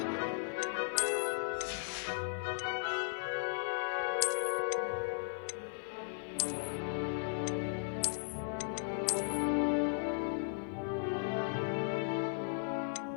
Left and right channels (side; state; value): right; silent; digital silence